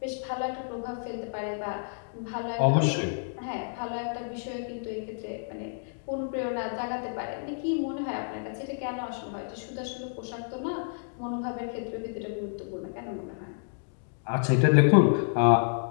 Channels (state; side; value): silent; right; digital silence